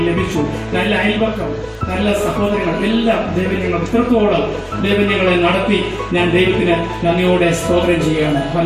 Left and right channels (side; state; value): both; identical; correlation 1.00